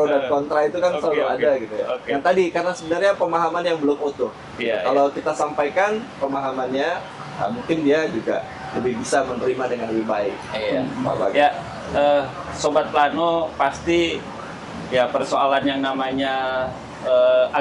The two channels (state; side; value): identical; both; correlation 1.00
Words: dan kontra itu kan selalu ada gitu ya. Yang tadi karena sebenarnya pemahaman yang belum utuh. Kalau kita sampaikan pemahamannya, mungkin dia juga lebih bisa menerima dengan lebih baik. Sobat Plano, pasti ya persoalan yang namanya